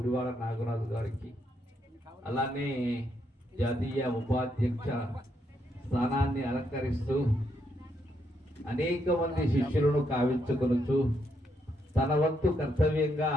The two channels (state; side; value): normal; both; correlation 0.77